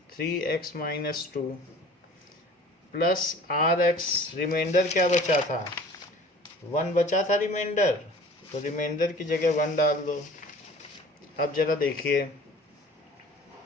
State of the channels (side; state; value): both; normal; correlation 0.46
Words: 3x minus 2 plus rx, reminder क्या बचा था 1 बचा था रिमाइंडर, तो रिमाइंडर की जगह 1 डाल दो। अब जरा देखिए,